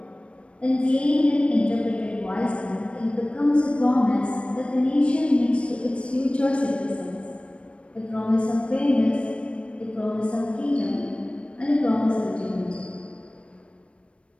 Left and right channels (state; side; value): late; right; 0.060 ms